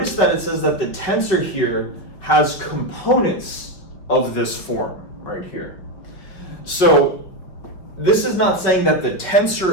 that it says that the tensor here has components of this form right here. So this is not saying that the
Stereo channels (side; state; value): right; late; 5.3 ms